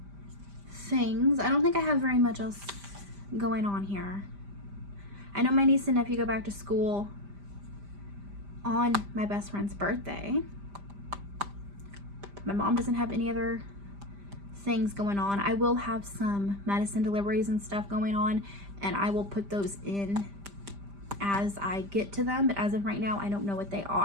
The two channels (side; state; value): left; late; 5.0 ms